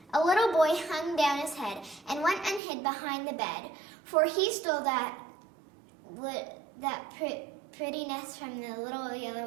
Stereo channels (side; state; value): left; drops out; at 2.6 s